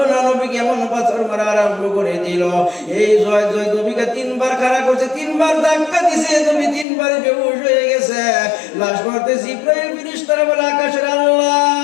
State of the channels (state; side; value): drops out; right; at 6.9 s